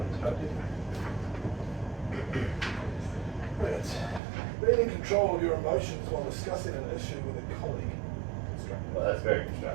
But being in control of your emotions while discussing an issue with a colleague. Constructive. Well, that's very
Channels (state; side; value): drops out; left; at 4.2 s